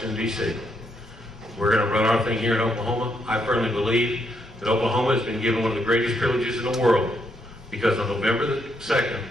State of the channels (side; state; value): both; normal; correlation 0.76